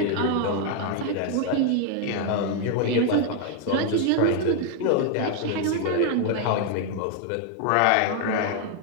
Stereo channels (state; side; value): different; both; correlation 0.00